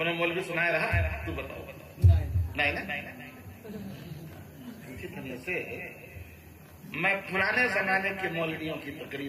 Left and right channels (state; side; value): identical; both; correlation 1.00